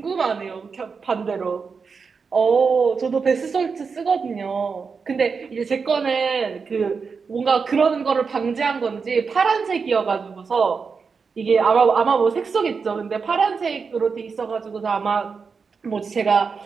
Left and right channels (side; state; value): left; quieter; 5.3 dB